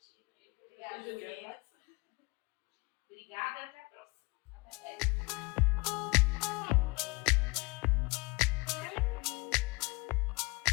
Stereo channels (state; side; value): quieter; right; 26.0 dB